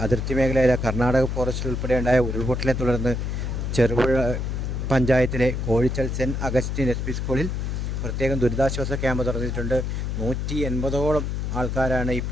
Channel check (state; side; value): noise; left; hum, 2 dB below the sound